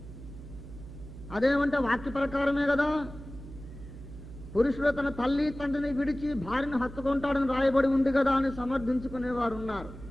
అదేమంటే వాక్య ప్రకారమే కదా. పురుషుడు తన తల్లి తండ్రిని విడిచి భార్యను హత్తుకుంటాడని రాయబడి ఉంది కదా అని సమర్థించుకునేవారు ఉన్నారు.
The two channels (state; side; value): noise; right; hum, 14 dB below the sound